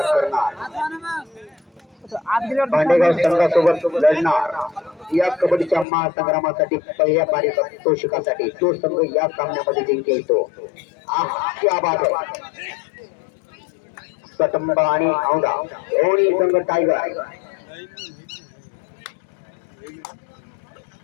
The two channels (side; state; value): right; drops out; at 5.9 s